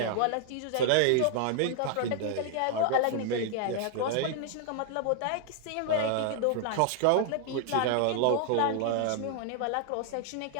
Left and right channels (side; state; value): both; different; correlation 0.00